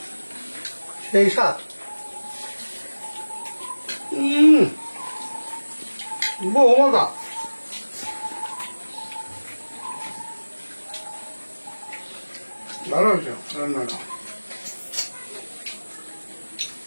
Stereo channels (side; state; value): both; inverted; correlation -1.00